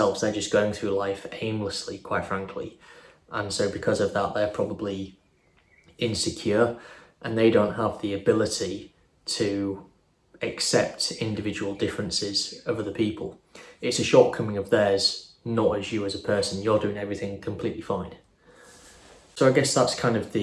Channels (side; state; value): both; identical; correlation 1.00